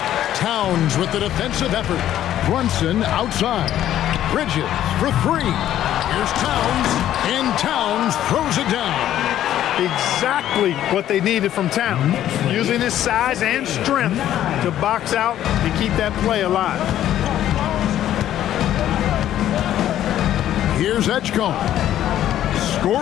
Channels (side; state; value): right; quieter; 11.9 dB